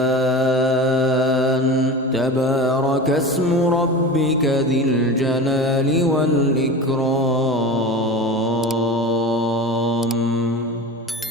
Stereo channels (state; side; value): normal; both; correlation 0.31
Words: تبارك اسم ربك ذي الجلال والإكرام